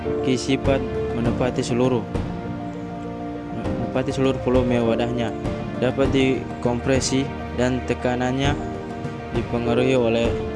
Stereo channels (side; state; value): both; identical; correlation 1.00